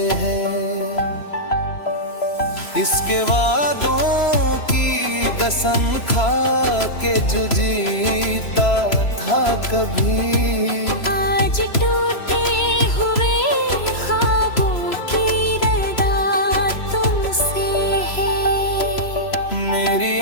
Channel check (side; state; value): right; late; 3.0 ms